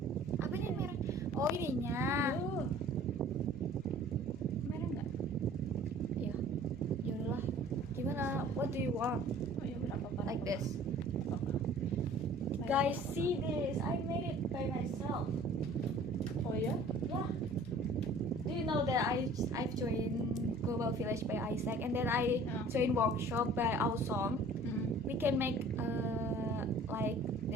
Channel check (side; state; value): both; normal; correlation 0.49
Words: Apanya yang merah? Oh ininya. Oh. Mereng nggak? Ya, ya udahlah. Gimana? What do you want? Oh ya udah apa-apa. Like this. Guys, see this. I made it by myself. Oh ya? Yeah. Do you know that I've joined Global Village by Isaac and then I joined workshop by Awesome. We can make like